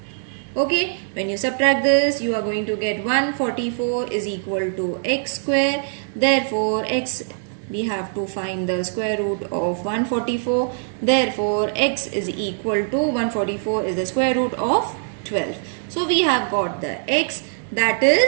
Okay, when you subtract this, you are going to get 144 is equal to X square. Therefore, X, we have to find the square root of 144. Therefore, X is equal to 144 is the square root of 12. So, we have got the X, that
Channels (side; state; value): left; silent; digital silence